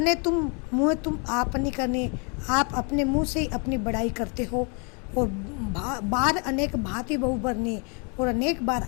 तुम आप नहीं करने, आप अपने मुंह से ही अपनी बड़ाई करते हो और बार अनेक भांति बहु बरने, और अनेक बार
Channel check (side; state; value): right; quieter; 35.3 dB